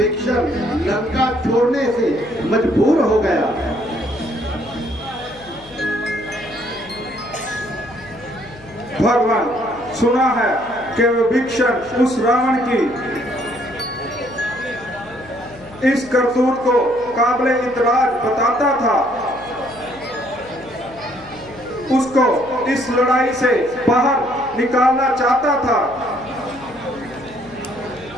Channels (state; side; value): noise; left; hum, 22 dB below the sound